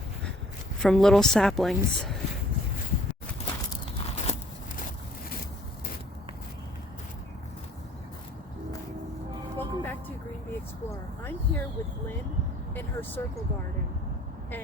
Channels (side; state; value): both; normal; correlation 0.57